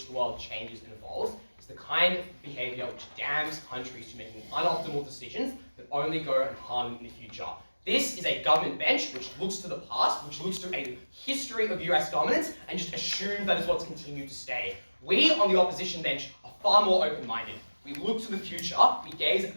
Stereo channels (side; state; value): both; inverted; correlation -1.00